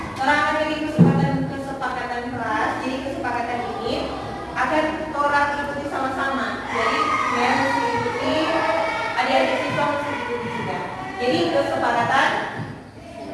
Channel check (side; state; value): both; identical; correlation 1.00